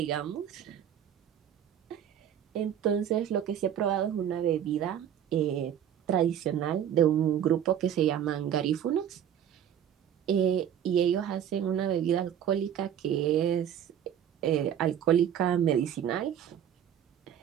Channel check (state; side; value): quieter; left; 9.7 dB